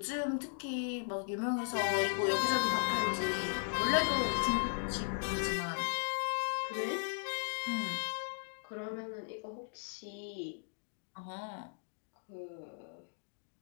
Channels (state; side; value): silent; right; digital silence